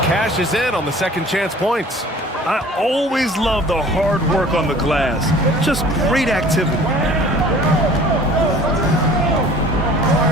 cashes in on the second chance points. I always love the hard work on the glass. Just great activity.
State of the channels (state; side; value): normal; both; correlation 0.48